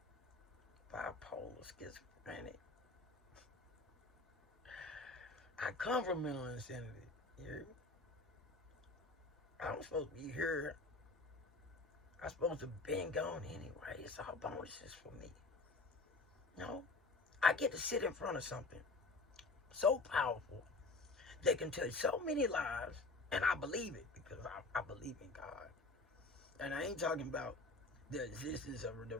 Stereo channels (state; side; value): quieter; right; 3.4 dB